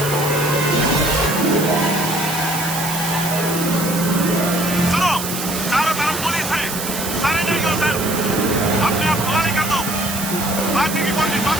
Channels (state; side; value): noise; right; hiss, 6 dB below the sound